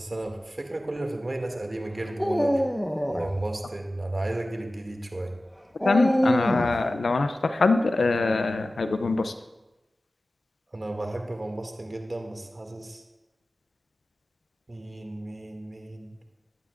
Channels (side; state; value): both; normal; correlation 0.96